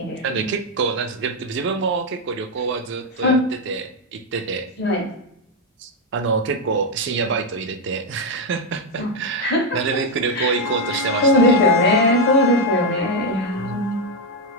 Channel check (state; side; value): normal; both; correlation 0.03